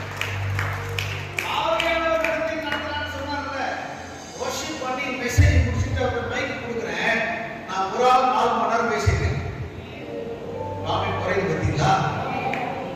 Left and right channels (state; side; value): identical; both; correlation 1.00